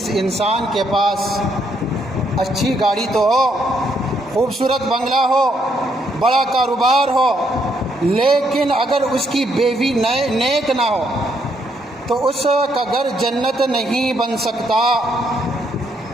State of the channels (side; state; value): both; normal; correlation 0.73